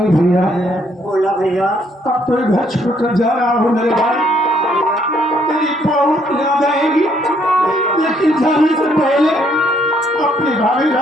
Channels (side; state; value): both; normal; correlation 0.68